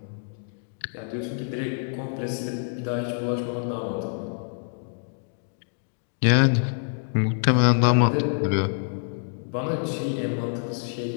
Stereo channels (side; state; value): right; silent; digital silence